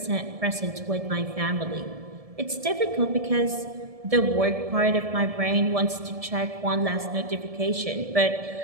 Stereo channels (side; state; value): left; late; 1.7 ms